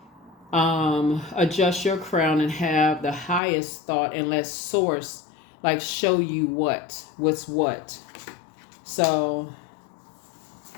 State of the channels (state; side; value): drops out; right; at 3.4 s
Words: adjust your crown and have the highest thought, and let Source, like, show you what's what. So,